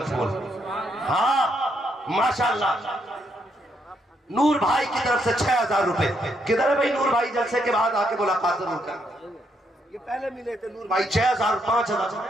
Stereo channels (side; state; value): both; normal; correlation 0.76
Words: फूल। हाँ माशाल्लाह। नूर भाई की तरफ से 6000 रुपए। किधर है भाई नूर भाई? जलसे के बाद आके मुलाकात जरूर कर। ये पहले मिले थे नूर भाई 6000 5000